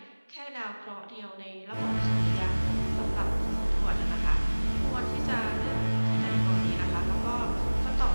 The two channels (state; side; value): inverted; both; correlation -1.00